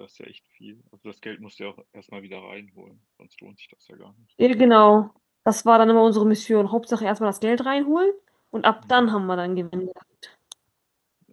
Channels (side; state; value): both; identical; correlation 1.00